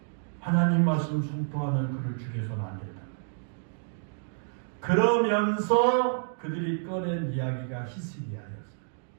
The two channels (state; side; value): silent; left; digital silence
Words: 하나님 말씀 선포하는 그를 죽여서는 안 된다. 그러면서 그들이 꺼낸 이야기가 히스기야였어요.